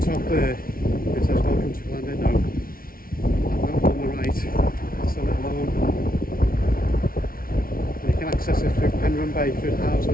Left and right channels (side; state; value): right; late; 0.43 ms